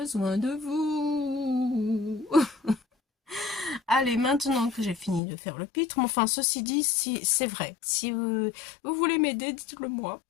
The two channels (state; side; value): drops out; right; at 5.2 s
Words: de vous. Allez, maintenant que j'ai fini de faire le pitre, enfin, ceci dit, si c'est vrai. Si vous voulez m'aider, dites-le moi.